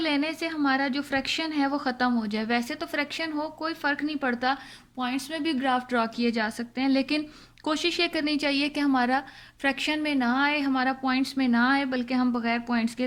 से हमारा जो फ्रैक्शन है वो ख़त्म हो जाए। वैसे तो फ्रैक्शन हो कोई फ़र्क नहीं पड़ता, पॉइंट्स में भी ग्राफ ड्रॉ किए जा सकते हैं, लेकिन कोशिश ये करनी चाहिए कि हमारा फ्रैक्शन में ना आए, हमारा पॉइंट्स में ना आए, बल्कि हम बगैर पॉइंट्स के,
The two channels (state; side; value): identical; both; correlation 1.00